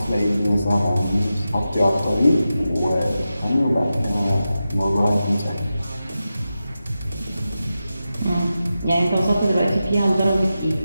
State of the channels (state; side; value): inverted; both; correlation -0.92